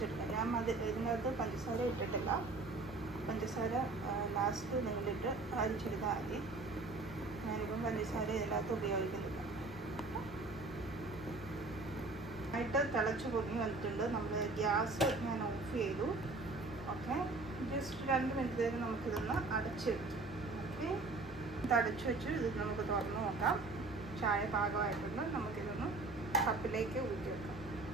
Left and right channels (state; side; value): quieter; left; 3.4 dB